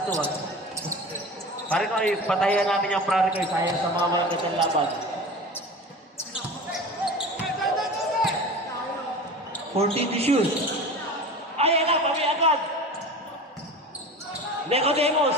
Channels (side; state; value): both; normal; correlation 0.34